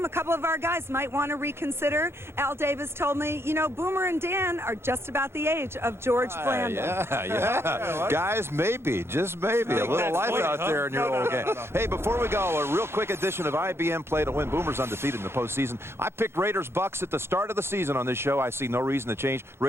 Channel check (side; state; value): left; late; 0.12 ms